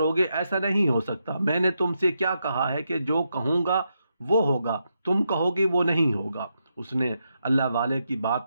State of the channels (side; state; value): both; inverted; correlation -0.83